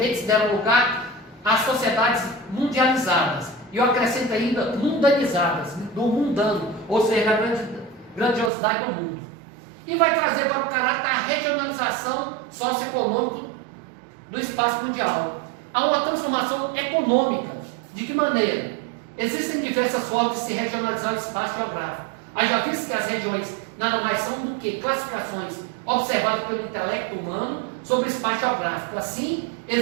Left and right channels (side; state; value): left; drops out; at 8.5 s